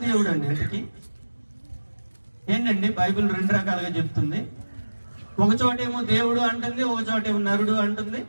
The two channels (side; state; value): both; inverted; correlation -1.00